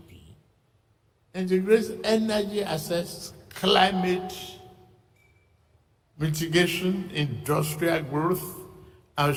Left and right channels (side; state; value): both; identical; correlation 1.00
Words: integrates energy access, climate mitigation, industrial growth, and